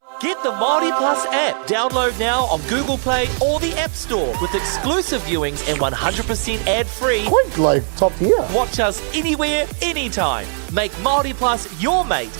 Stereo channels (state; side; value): silent; left; 62 dB below the other